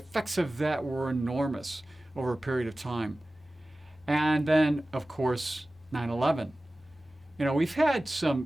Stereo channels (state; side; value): normal; both; correlation 0.96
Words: of that were enormous over a period of time. And then, of course, 9/11. You know, we've had